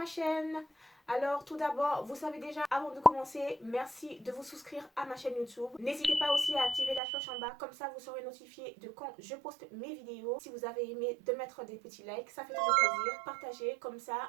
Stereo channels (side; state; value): left; drops out; at 7.0 s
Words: chaîne. Alors tout d'abord, vous savez déjà, avant de commencer, merci de vous souscrire à ma chaîne YouTube. N'hésitez pas aussi à activer la cloche en bas, comme ça vous serez notifié de quand je poste mes vidéos. Si vous avez aimé, de mettre des petits likes, ça fait toujours plaisir. Partagez, comme